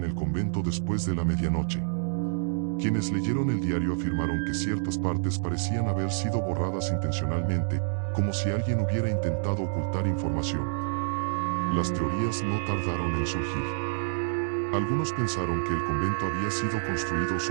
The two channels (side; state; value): left; silent; digital silence